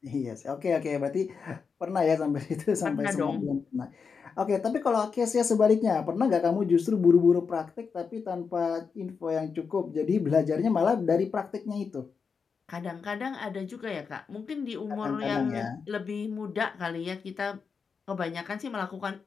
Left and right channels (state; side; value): quieter; right; 5.6 dB